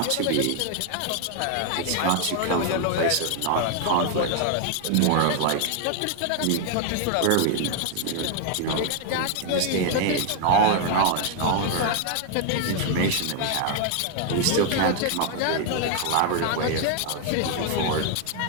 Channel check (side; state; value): both; different; correlation 0.00